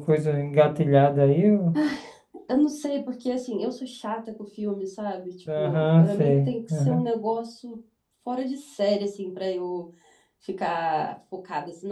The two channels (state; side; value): identical; both; correlation 1.00